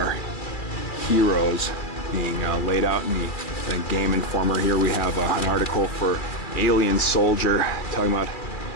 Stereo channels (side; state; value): right; late; 2.3 ms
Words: Heores being laid out in the Game Informer. Here we have an article for Alien Soldier talking about